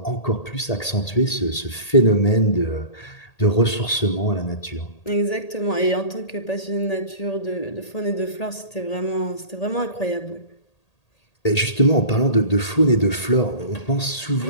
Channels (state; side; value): late; right; 1.8 ms